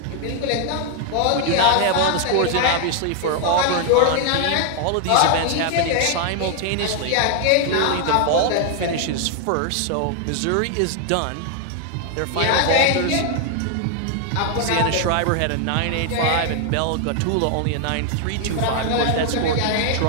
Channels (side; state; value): both; different; correlation 0.00